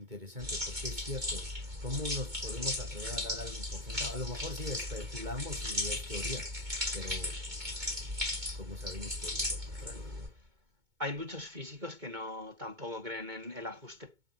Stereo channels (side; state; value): left; late; 2.2 ms